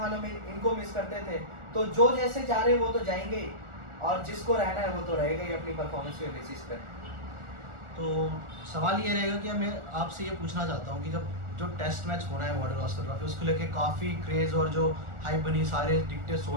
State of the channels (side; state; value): left; late; 1.4 ms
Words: हम इनको मिस करते थे। तो जो जैसे जा रहे वो तो जाएंगे ही, और जिसको रहना है वो तो रहेगा ही अपनी परफॉर्मेंस के बेसिस पे। तो सवाल ये रहेगा कि मैं आपसे ये पूछना चाहता हूँ कि जब जो टेस्ट मैच होना है बॉर्डर गावस्कर ट्रॉफी, उसको लेके काफ़ी क्रेज़ और जो हाइप बनी, सारे टिकटें